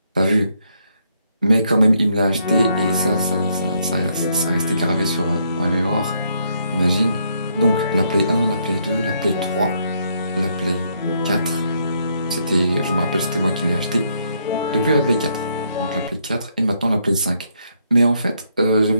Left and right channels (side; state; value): both; inverted; correlation -0.73